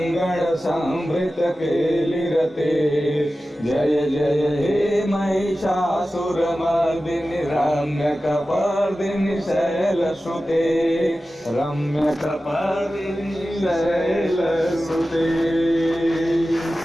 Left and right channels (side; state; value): both; normal; correlation 0.94